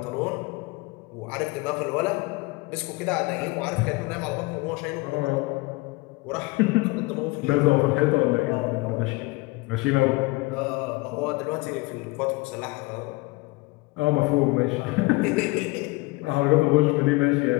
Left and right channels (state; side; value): quieter; right; 23.7 dB